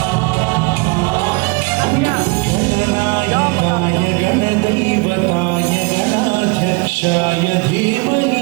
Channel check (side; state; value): left; quieter; 27.7 dB